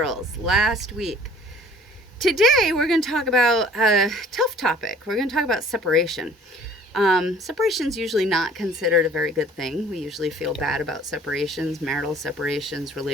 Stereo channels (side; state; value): both; normal; correlation 0.52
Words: last week. Today, we're going to talk about a tough topic. We're going to talk about separation. Separation is usually not considered a very good thing. We usually feel bad about separations, marital separations,